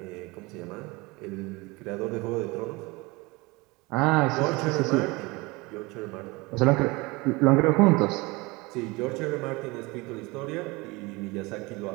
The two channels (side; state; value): left; quieter; 24.1 dB